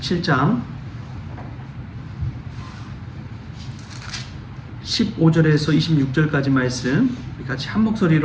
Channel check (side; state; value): both; identical; correlation 1.00